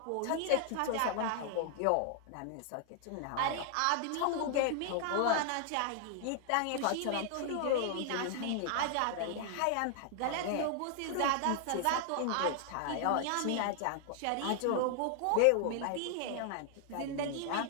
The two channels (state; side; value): different; both; correlation 0.00